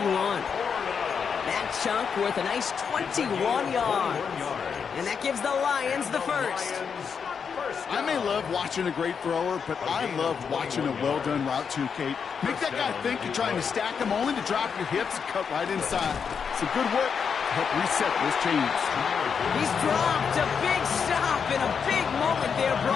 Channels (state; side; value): quieter; right; 6.5 dB